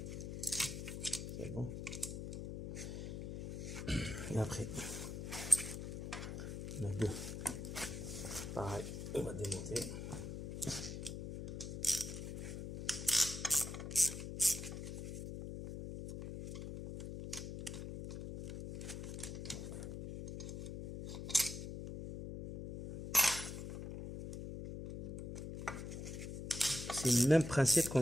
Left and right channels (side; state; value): left; noise; hum, 6 dB below the sound